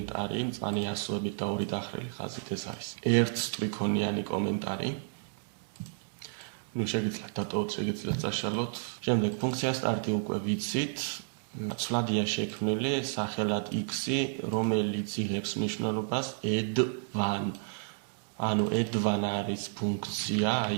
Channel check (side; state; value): left; silent; digital silence